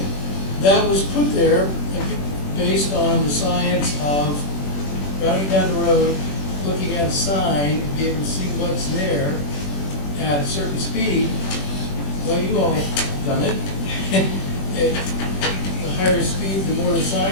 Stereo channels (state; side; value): late; right; 21 ms